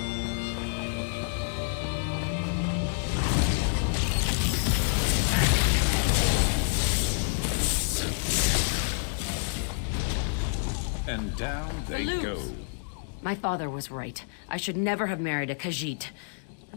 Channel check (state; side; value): silent; right; digital silence